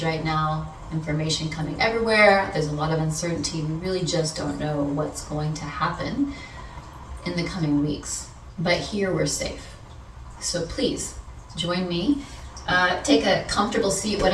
right now. Information coming everywhere. There's a lot of uncertainty. We really just don't know what's going to happen in the coming weeks. But here we're safe. So please join me. Take a comfortable seat,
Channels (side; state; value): both; identical; correlation 1.00